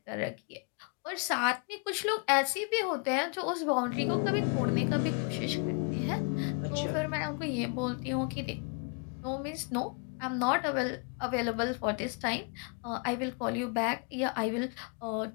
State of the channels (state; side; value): quieter; right; 36.6 dB